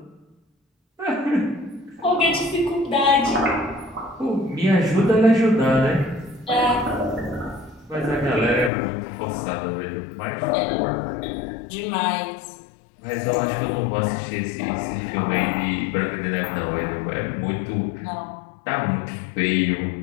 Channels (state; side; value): drops out; right; at 8.7 s